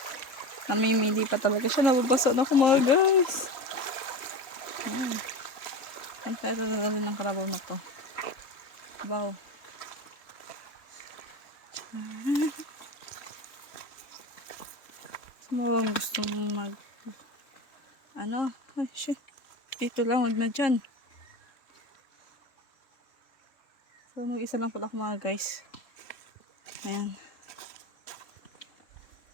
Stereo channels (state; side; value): late; right; 3.6 ms